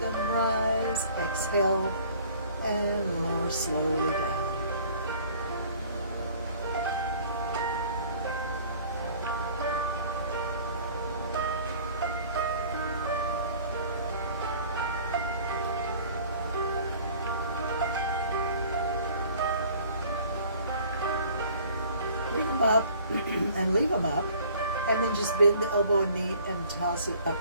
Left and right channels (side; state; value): both; inverted; correlation -0.51